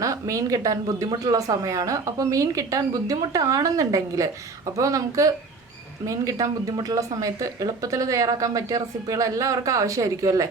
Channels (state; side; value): quieter; left; 4.1 dB